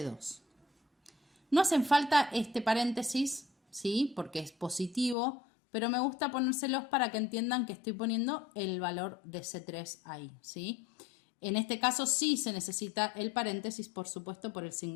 No hacen falta este paréntesis, ¿sí? Porque es positivo, pero me gusta ponérselos para que entiendan que estoy poniendo el valor de C3 ahí, ¿sí? En este caso sí se necesita el paréntesis, por supuesto, por el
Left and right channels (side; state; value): right; drops out; at 5.2 s